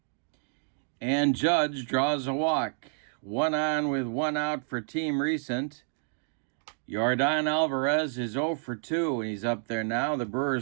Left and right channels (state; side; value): silent; left; digital silence